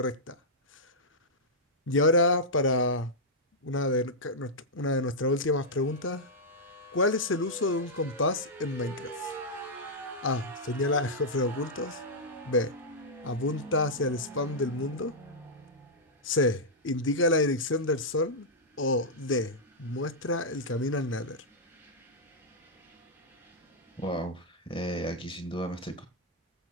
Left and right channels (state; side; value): normal; both; correlation -0.08